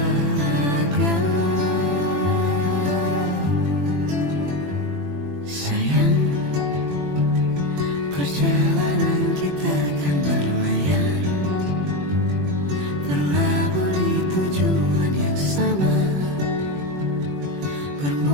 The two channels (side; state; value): left; late; 21 ms